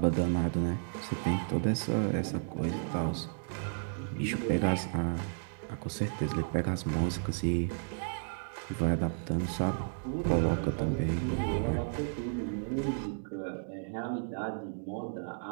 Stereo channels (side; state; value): left; silent; 56 dB below the other